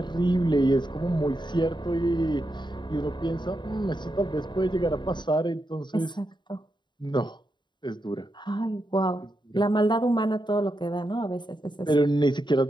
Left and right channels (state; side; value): late; right; 0.22 ms